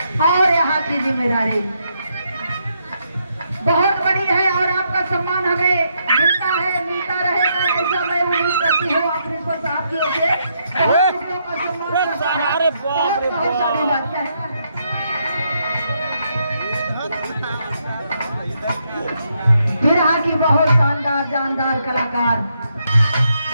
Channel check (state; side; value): inverted; both; correlation -0.78